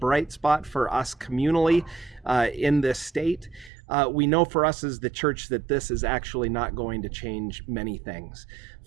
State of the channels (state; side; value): drops out; left; at 3.7 s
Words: spot for us communally in this state, we know for us as the church that this is actually not going to change many things.